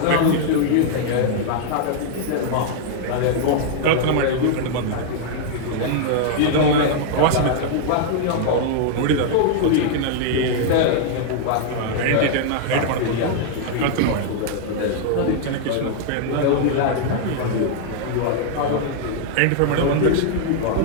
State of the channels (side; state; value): both; different; correlation -0.01